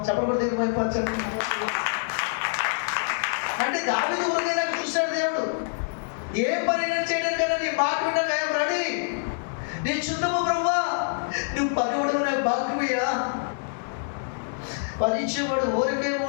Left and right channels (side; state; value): right; silent; digital silence